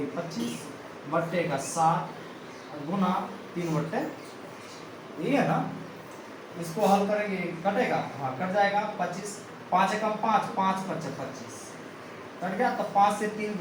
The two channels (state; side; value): identical; both; correlation 1.00